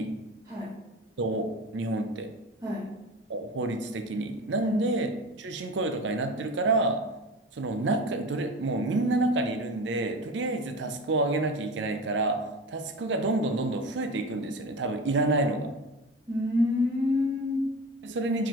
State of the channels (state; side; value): normal; both; correlation 0.31